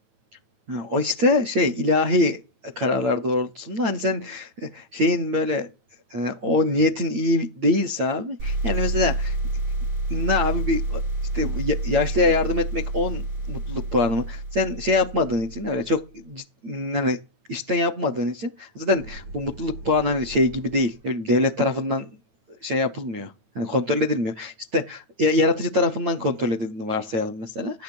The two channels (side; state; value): left; late; 9.1 ms